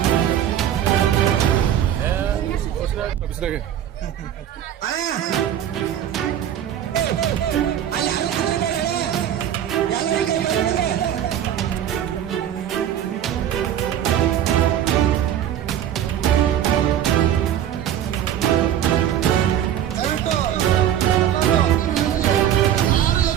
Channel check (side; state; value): left; quieter; 10.5 dB